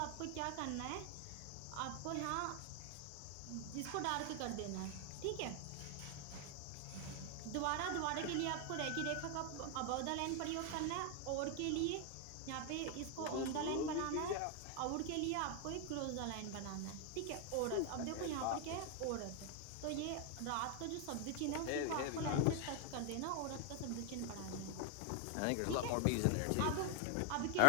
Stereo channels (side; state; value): both; different; correlation 0.00